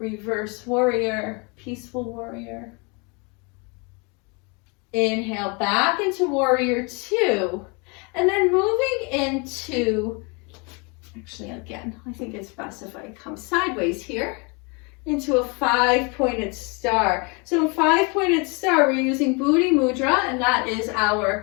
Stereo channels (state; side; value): quieter; right; 31.2 dB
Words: warrior, peaceful warrior. Inhale back into warrior 2, and then moving into, actually again, I think it's best if I come sideways here, into a 5-pointed star. So a 5-pointed star, we're using Buddhi Mudra, and that is